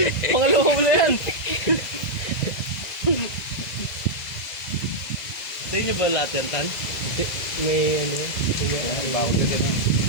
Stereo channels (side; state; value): right; late; 2.0 ms